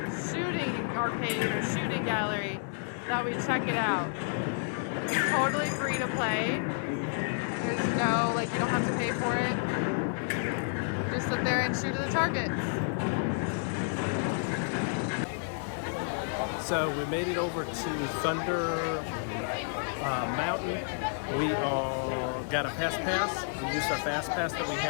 shooting arcade or shooting gallery. Thought we'd check it out. It's totally free to play. There's no, like, you don't have to pay for it. Just sit there and shoot at the targets. So we made it over to Thunder Mountain. We got a fast pass. We used our fast pass that we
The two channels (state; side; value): silent; right; digital silence